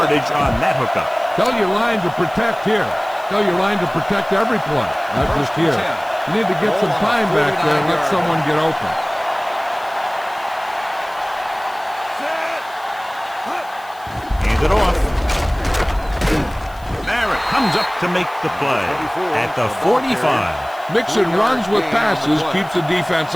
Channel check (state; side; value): noise; left; hiss, 25 dB below the sound